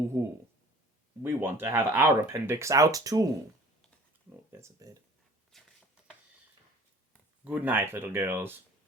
We want to have our appendix out too." Oh, there's a bed. "Good night, little girls.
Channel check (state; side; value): normal; both; correlation 0.49